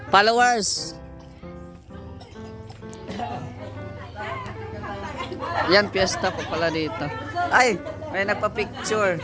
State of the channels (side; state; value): both; identical; correlation 1.00